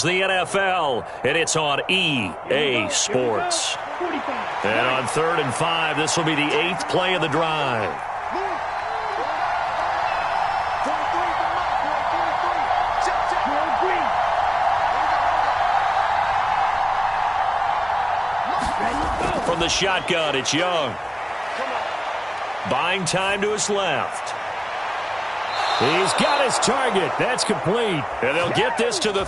the NFL, and it's on EA Sports. And on 3rd and 5, this will be the 8th play of the drive. From the shotgun, it's Young. Buying time to his left. He's got his target. That's complete. And they'll get this to the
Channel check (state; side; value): identical; both; correlation 1.00